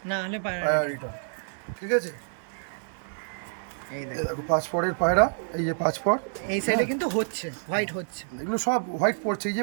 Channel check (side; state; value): left; silent; digital silence